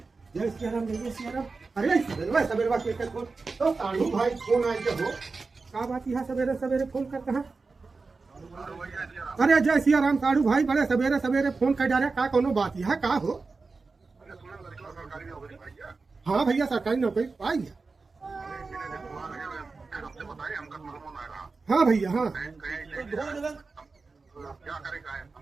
जय सियाराम, जय जय सियाराम। अरे सवेरे सवेरे के फोन तो साढ़ू भाई फोन आए हो का बात है? सवेरे सवेरे फोन करते हैं। अरे जय सियाराम साढ़ू भाई, बड़े सवेरे सवेरे फोन कर जा रहे का कोनो बात है का हो? हाँ भैया सरकारी नौकरी पाई है। हाँ भैया हाँ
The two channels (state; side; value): quieter; left; 4.1 dB